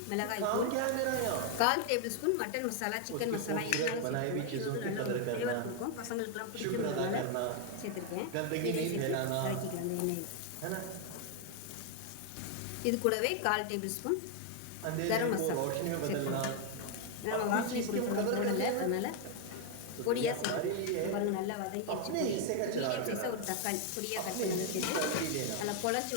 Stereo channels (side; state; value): both; different; correlation 0.01